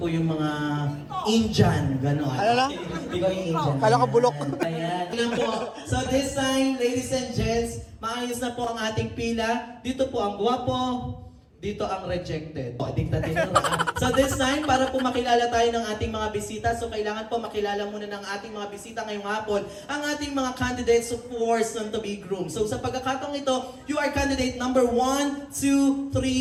yung mga Indian, gano'n. Ano na? Ikaw yung Indian. Kala ko bulok. Ayan. Ayan po. So this time, ladies and gents, maayos na po ang ating pila. Dito po ang guwapo. Dito ang rejected. Dictator. So this time, para po makilala tayo ng ating mga bisita, so kailangan po makilala muna ng ating mga bisita ngayong hapon, ang ating mga candidates for soon to be groomed. So sa pagkakataong ito, you are candidate number 1, 2,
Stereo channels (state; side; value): identical; both; correlation 1.00